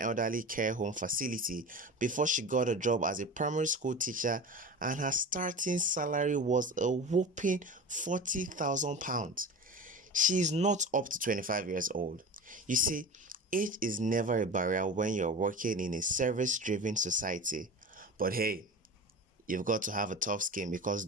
care home facility before she got a job as a primary school teacher, and her starting salary was a whopping £40,000. She is not up to 25 years old. You see, age is never a barrier when you're working in a service-driven society. But hey, you've got to have a tough skin because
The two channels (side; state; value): both; normal; correlation 0.32